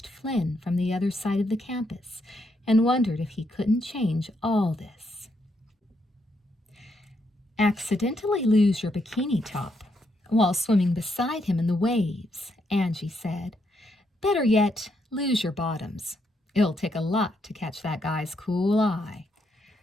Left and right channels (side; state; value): both; normal; correlation 0.77